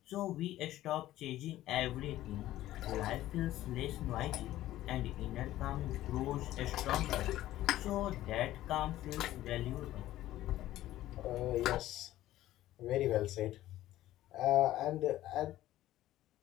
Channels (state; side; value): quieter; right; 14.6 dB